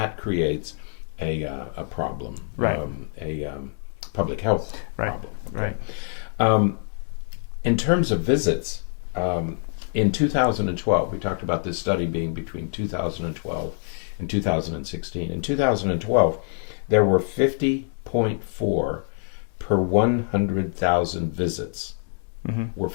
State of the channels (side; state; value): right; silent; digital silence